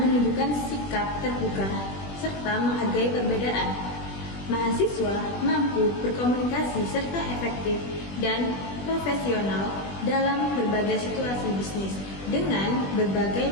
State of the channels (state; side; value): late; right; 20 ms